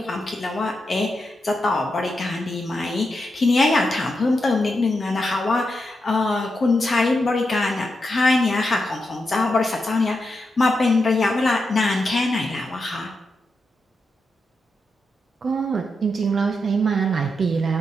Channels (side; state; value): both; normal; correlation 0.86